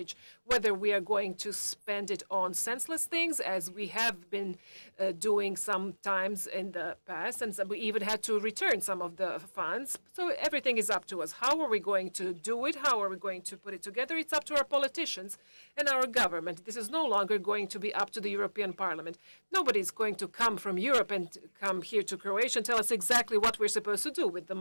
whether we are going to spend it on senseless things, as we have been doing sometimes in the past, and we even had to return some of the funds. So everything is up to us. How are we going to do it? How are we going to put it together? It's up to our politicians and our government. This is no longer going to be up to the European Parliament. Nobody's going to come from Europe and come here to Croatia and tell us exactly what we're supposed to do with the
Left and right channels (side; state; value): both; inverted; correlation -1.00